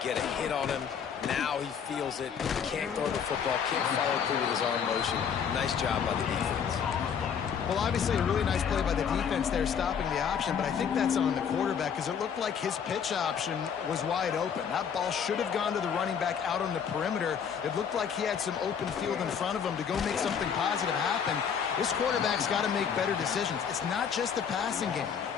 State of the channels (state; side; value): quieter; right; 7.3 dB